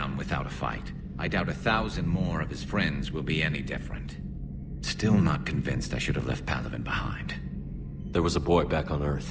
without a fight. I doubt 1,000 more of his friends will be any different. Still not convinced I should have left Palaven behind. There was a boy back on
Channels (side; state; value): both; identical; correlation 1.00